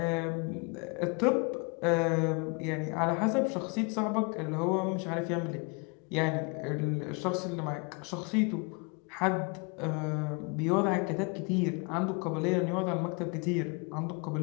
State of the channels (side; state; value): right; quieter; 31.9 dB